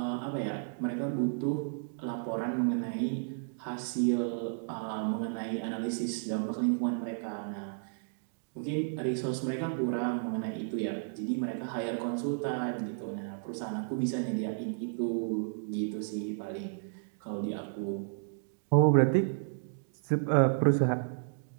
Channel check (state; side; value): silent; left; digital silence